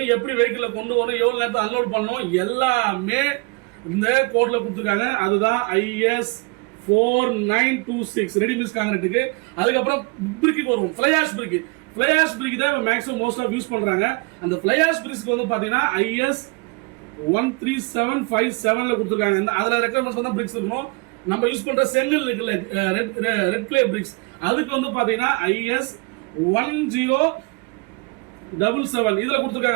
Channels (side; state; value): left; quieter; 28.9 dB